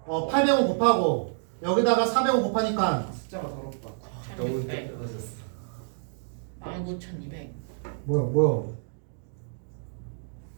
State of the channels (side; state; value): left; silent; digital silence